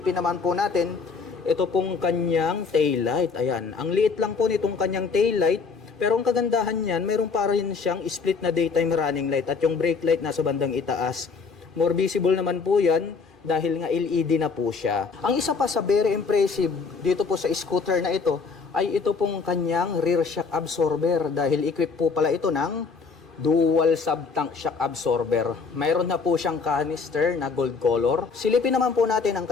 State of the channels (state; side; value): quieter; right; 4.9 dB